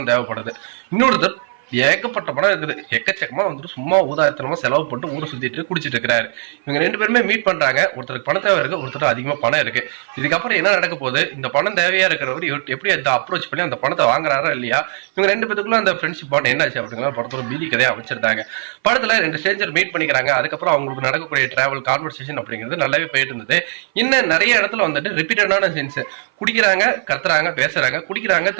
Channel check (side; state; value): left; silent; 58 dB below the other